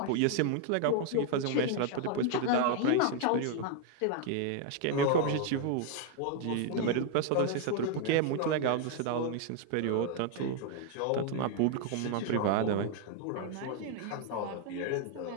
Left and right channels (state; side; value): different; both; correlation 0.00